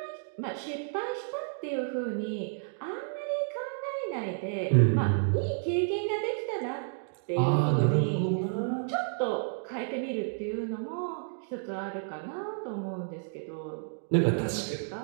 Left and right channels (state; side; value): silent; left; digital silence